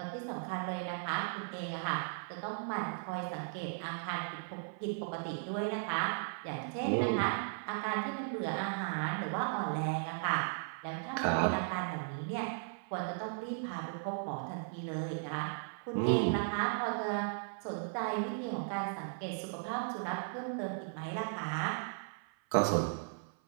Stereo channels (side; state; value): left; silent; 53 dB below the other